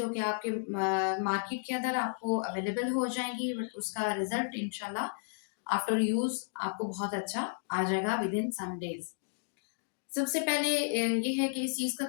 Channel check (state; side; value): silent; right; digital silence